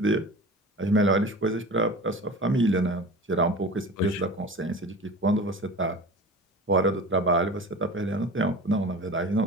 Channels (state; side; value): normal; both; correlation 0.36